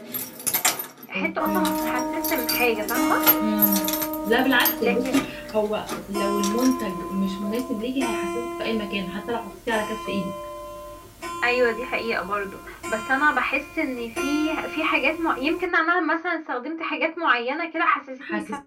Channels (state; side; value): identical; both; correlation 1.00